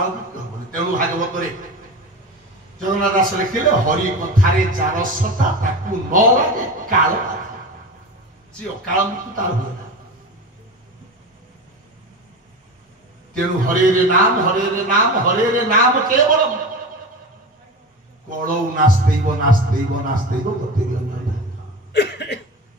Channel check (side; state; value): both; normal; correlation 0.28